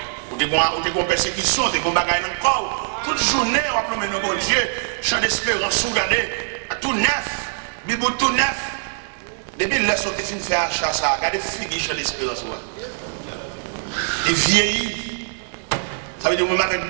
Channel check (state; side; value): silent; left; digital silence